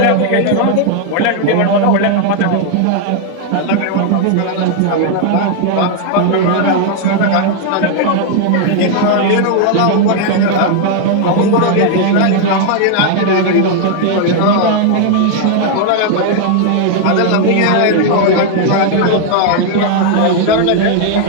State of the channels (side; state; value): both; different; correlation 0.00